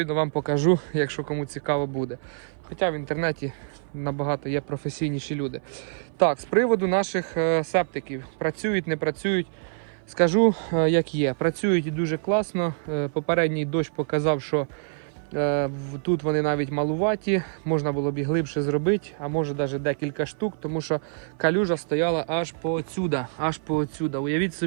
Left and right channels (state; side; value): silent; left; 57 dB below the other